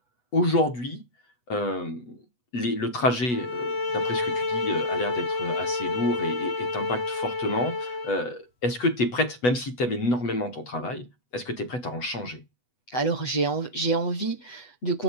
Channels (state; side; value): late; right; 8.1 ms